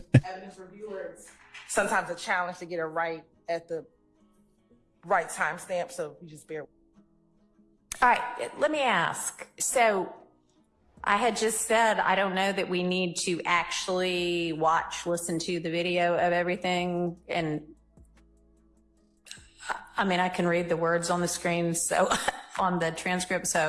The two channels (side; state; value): both; identical; correlation 1.00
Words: evidence reviewers. Sometimes a challenge to get it right at the right timestamp, so you just bear. All right, let me ask. So I had just said, I don't know that we need to actually listen to the video of everything. And I mean, I can read the words on the screen, so on the transcript.